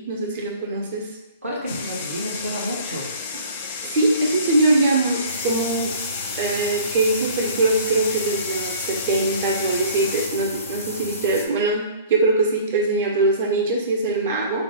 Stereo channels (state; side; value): inverted; both; correlation -0.48